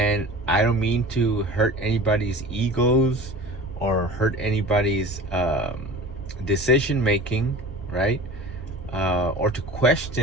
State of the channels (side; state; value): both; normal; correlation 0.38